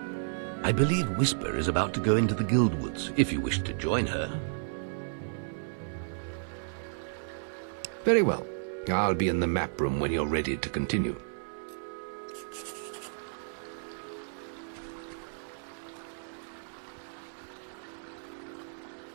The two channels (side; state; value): left; silent; 56 dB below the other